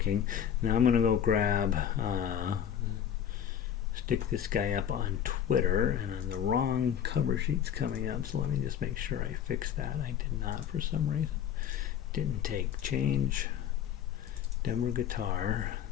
Now I'm going to go grab, stick this guy up on Twitter, and on the wrong cover sheet's coming up, so let me just make sure I fix that. I did not for some reason. Didn't take change Denver guitar.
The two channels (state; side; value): quieter; right; 9.3 dB